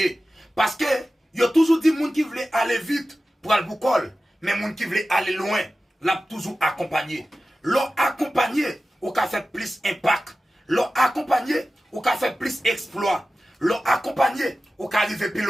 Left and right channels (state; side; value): normal; both; correlation 0.95